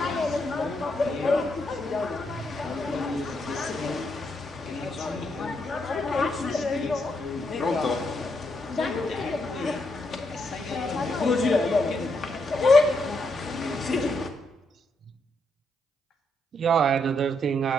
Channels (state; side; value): normal; both; correlation 0.78